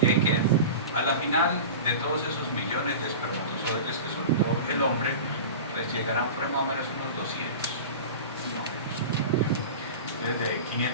y ahí quedan. A la final de todos esos millones de espermatozoides que soltó el hombre, pues llegarán por más o menos unos 200. Desde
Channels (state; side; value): inverted; both; correlation -0.32